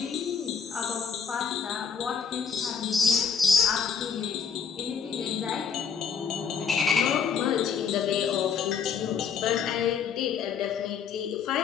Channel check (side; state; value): right; quieter; 6.6 dB